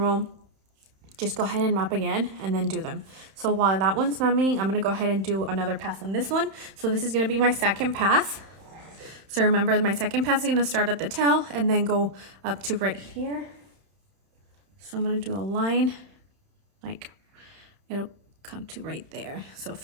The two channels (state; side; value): late; left; 31 ms